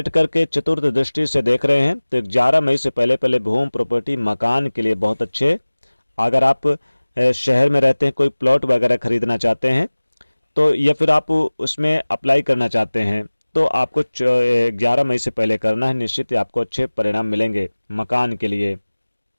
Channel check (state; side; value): inverted; both; correlation -1.00